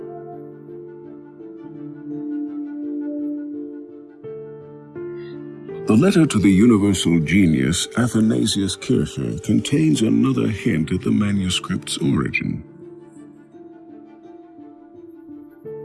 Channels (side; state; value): both; identical; correlation 1.00